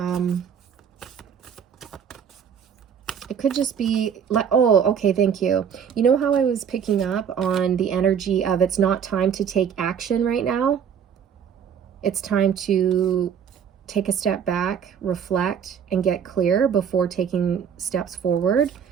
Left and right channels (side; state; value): left; quieter; 7.8 dB